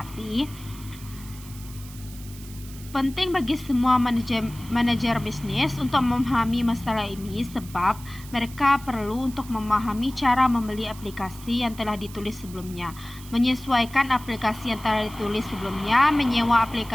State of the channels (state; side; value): noise; right; hiss, 18 dB below the sound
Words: Penting bagi semua manajer bisnis untuk memahami masalah ini sebab mereka perlu untuk memahami cara membeli aplikasi yang telah ditulis sebelumnya, menyesuaikan aplikasi yang telah ditulis sebelumnya, menyewa